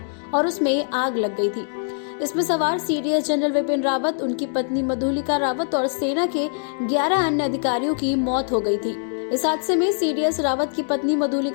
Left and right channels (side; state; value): right; silent; digital silence